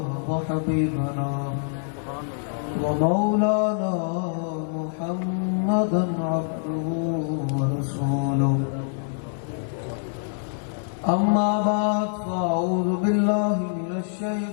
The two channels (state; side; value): silent; right; digital silence